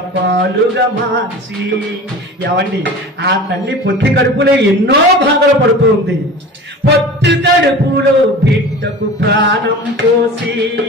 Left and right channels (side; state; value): both; normal; correlation 0.37